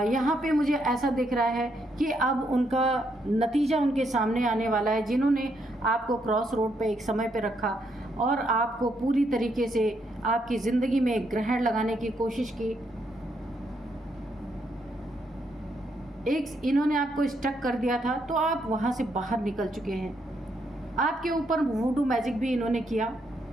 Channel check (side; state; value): both; normal; correlation 0.76